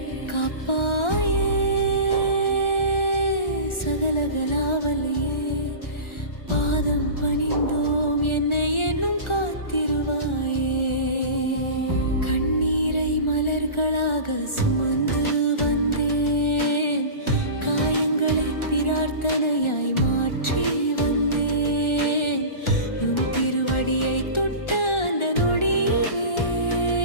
காப்பாயே. சகலகலாவலியே பாதம் பணிந்தோம், என்னை என்னும் காத்திருவாயே. கண்ணீரை மலர்களாக சுமந்து வந்தேன், காயங்களை பிரார்த்தனையாய் மாற்றி வந்தேன். உன் திருவடியை தொட்ட அந்த நொடியிலே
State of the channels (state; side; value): late; right; 1.4 ms